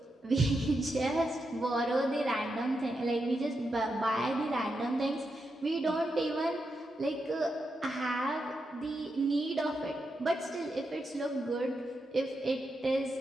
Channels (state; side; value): normal; both; correlation 0.85